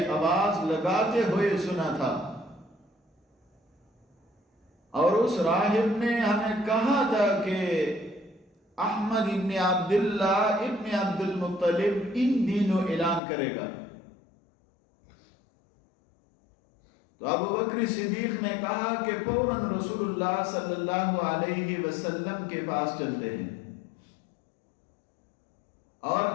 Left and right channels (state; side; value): drops out; right; at 13.2 s